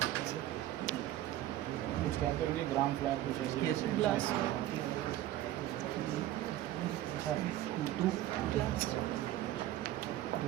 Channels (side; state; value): left; quieter; 13.9 dB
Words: कुछ कहते होंगे ग्राम फ्लावर कुछ ऐसे। Yes. Glass.